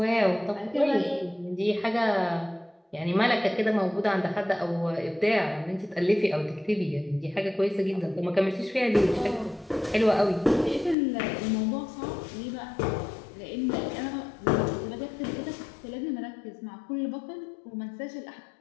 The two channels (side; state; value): right; drops out; at 11.0 s